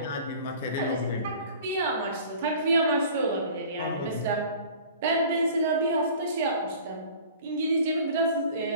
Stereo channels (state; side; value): inverted; both; correlation -0.45